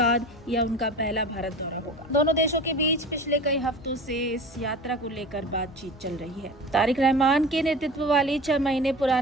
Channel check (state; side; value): normal; both; correlation 0.35